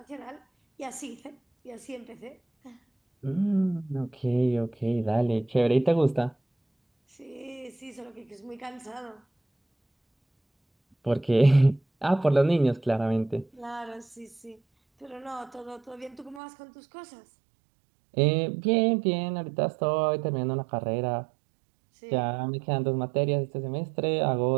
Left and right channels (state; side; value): drops out; left; at 16.4 s